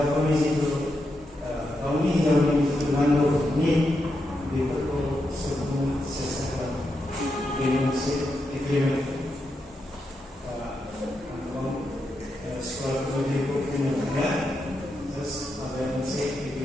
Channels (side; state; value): both; normal; correlation 0.85